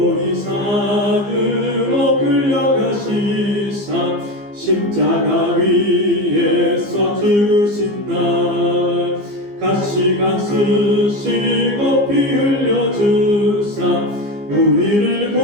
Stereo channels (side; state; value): left; late; 15 ms